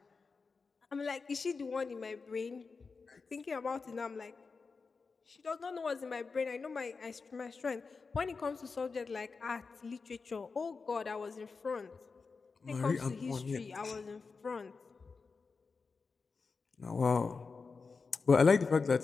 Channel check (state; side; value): quieter; right; 4.6 dB